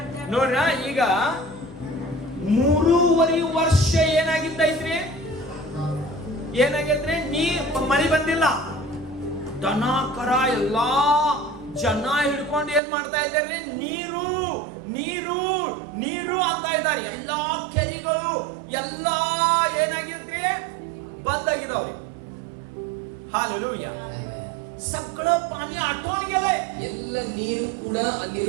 ನೋಡ್ರ, ಈಗ 3.5 ವರ್ಷ ಏನಾಗಿದ್ದೈತ್ರಿ? ಏನಾಗೈತ್ರಿ? ಮಳಿ ಬಂದಿಲ್ಲ. ದನ ಕರ ಎಲ್ಲಾ ಜನ ಹಿಡ್ಕೊಂಡು ಏನ್ ಮಾಡ್ತಾ ಇದ್ದಾರೆ? ನೀರು ನೀರು ನೀರು ಅಂತ ಇದ್ದಾರೆ. ಎಲ್ಲಾ ಕೆರೆಗಳು ಎಲ್ಲಾ ಏನಾಗಿದ್ರಿ? ಬಂದಾಗಿದಾವ್ರಿ. हालेलुया. सगळं पाणी आटवून गेलंय. ಎಲ್ಲ ನೀರು ಕೂಡ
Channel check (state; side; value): drops out; left; at 12.8 s